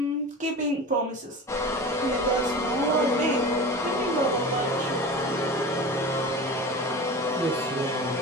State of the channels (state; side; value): normal; both; correlation 0.32